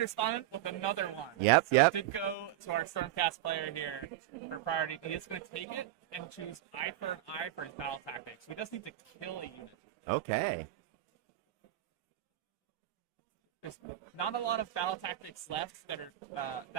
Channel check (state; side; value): quieter; left; 13.6 dB